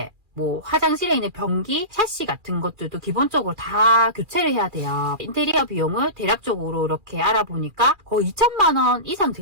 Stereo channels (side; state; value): left; late; 2.4 ms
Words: 화장실에 있는 변기, 샤시 같은 것들도 기본적으로 다 교체를 해야 돼요. 인테리어 비용을 대략적으로 이렇게 알아보니까 거의 2천만 원 이상